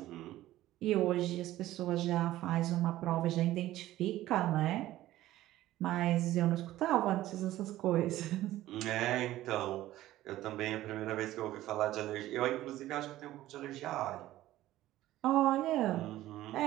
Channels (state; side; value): quieter; left; 15.0 dB